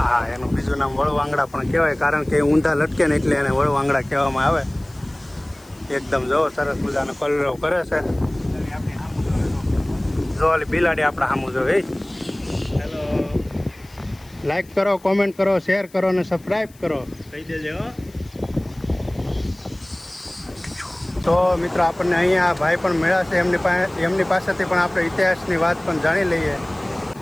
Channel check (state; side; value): noise; left; hiss, 27 dB below the sound